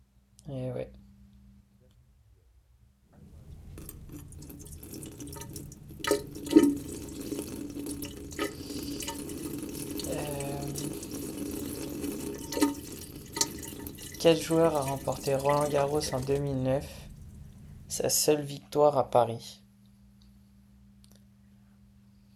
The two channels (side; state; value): both; identical; correlation 1.00